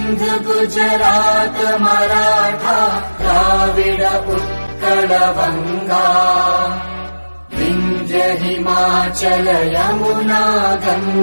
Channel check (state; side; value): inverted; both; correlation -1.00